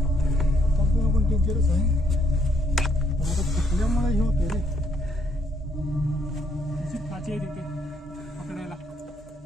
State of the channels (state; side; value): normal; both; correlation 0.70